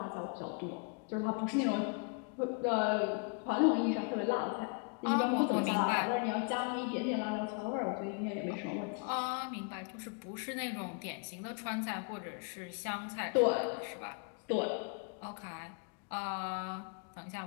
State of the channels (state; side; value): quieter; right; 36.2 dB